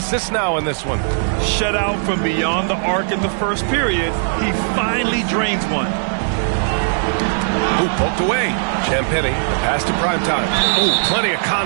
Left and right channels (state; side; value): silent; left; digital silence